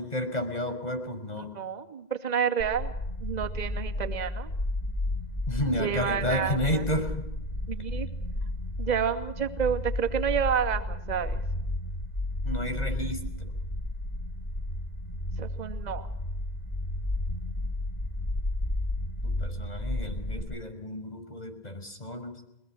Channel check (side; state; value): right; late; 2.0 ms